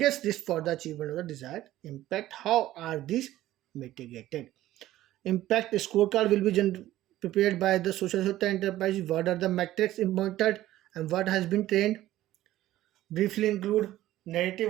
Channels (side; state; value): left; quieter; 14.6 dB